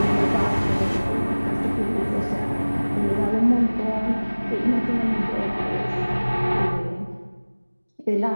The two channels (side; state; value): both; inverted; correlation -1.00